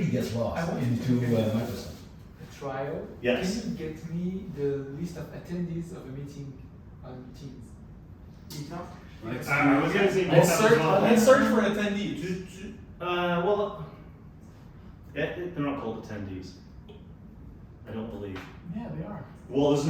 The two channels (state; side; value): identical; both; correlation 1.00